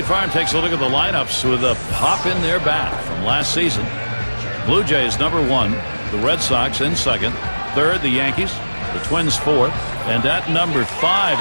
Farm takes a look at the lineups with a pop in their bat from last season. Blue Jays number 1, the Red Sox in second, third the Yankees, the Twins fourth, and at number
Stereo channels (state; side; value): inverted; both; correlation -1.00